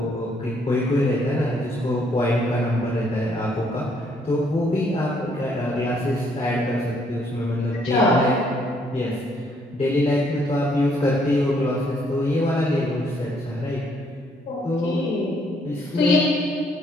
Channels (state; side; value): normal; both; correlation 0.69